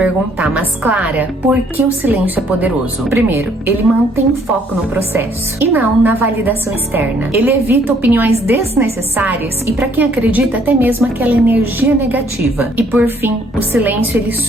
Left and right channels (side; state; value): both; normal; correlation 0.64